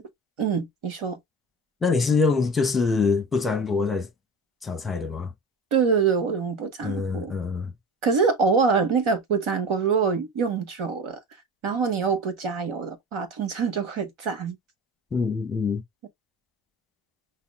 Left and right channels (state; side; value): normal; both; correlation 0.34